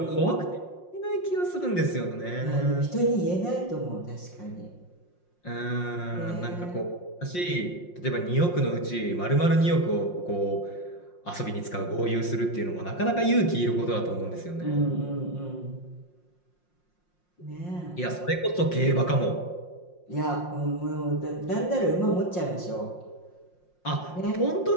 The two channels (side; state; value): right; late; 5.6 ms